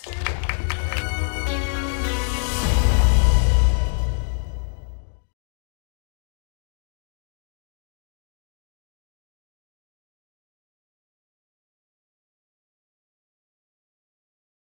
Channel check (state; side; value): silent; right; digital silence